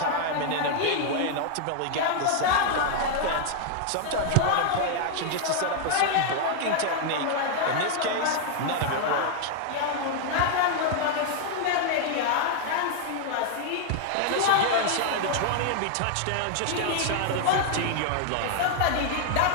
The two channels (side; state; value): both; different; correlation 0.00